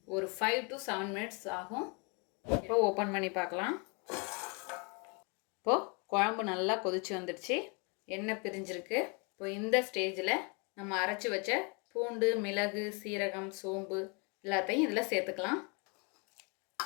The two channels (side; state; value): right; quieter; 33.0 dB